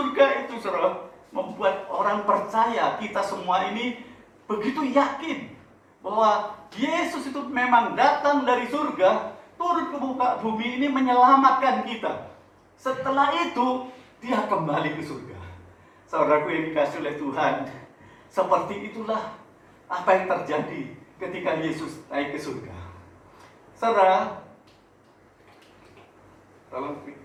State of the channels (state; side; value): identical; both; correlation 1.00